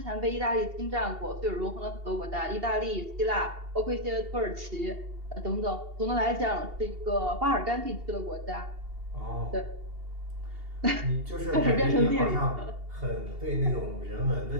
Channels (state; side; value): late; left; 2.8 ms